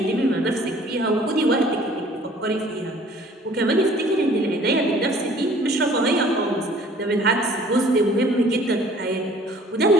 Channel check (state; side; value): normal; both; correlation 0.53